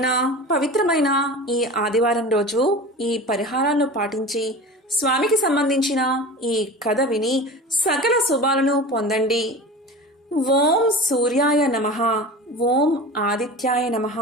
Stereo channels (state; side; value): normal; both; correlation 0.34